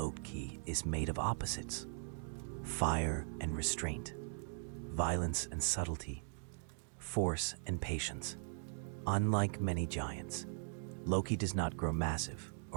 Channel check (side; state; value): left; silent; digital silence